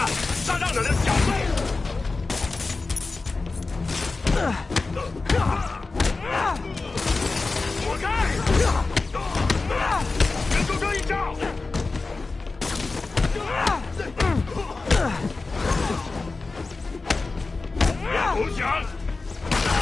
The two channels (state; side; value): quieter; right; 3.8 dB